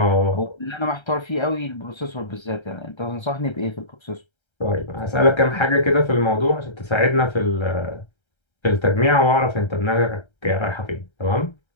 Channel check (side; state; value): right; late; 1.3 ms